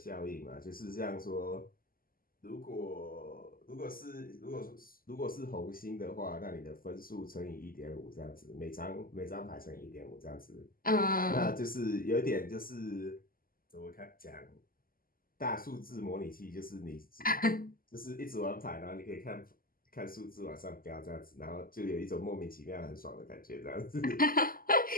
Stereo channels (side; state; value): right; late; 0.42 ms